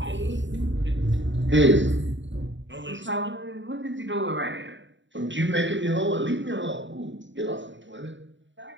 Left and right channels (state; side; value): late; left; 0.54 ms